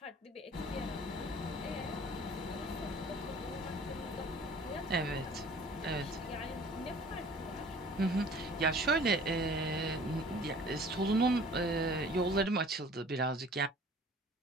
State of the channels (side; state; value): both; normal; correlation 0.49